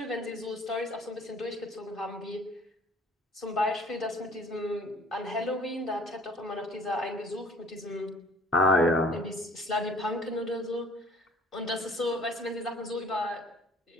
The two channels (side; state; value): both; normal; correlation 0.53